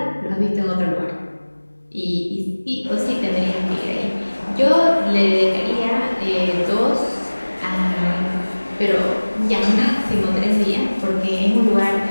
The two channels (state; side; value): inverted; both; correlation -1.00